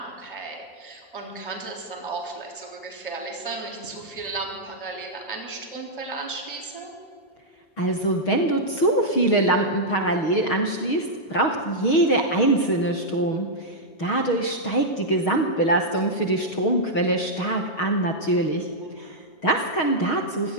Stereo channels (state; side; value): late; right; 6.3 ms